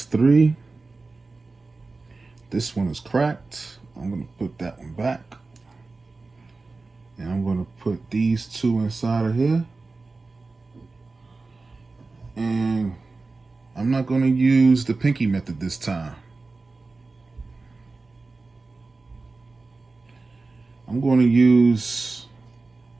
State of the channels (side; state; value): left; quieter; 3.7 dB